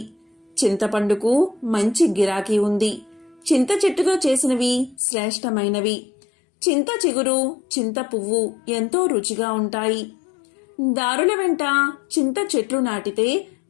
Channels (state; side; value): drops out; right; at 5.0 s